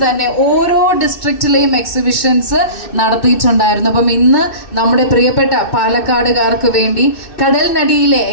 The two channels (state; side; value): late; right; 2.6 ms